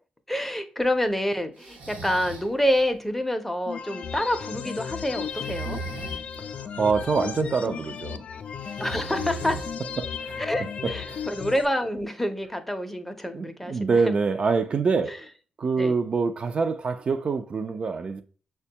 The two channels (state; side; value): normal; both; correlation 0.86